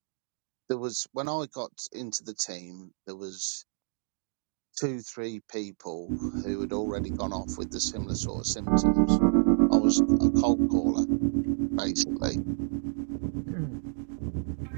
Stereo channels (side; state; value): left; silent; digital silence